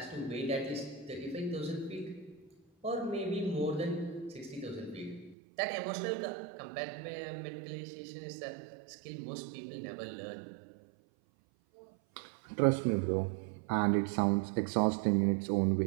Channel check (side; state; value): left; drops out; at 5.4 s